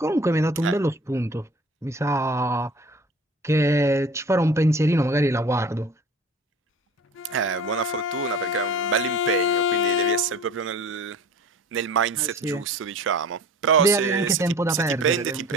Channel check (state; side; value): normal; both; correlation 0.43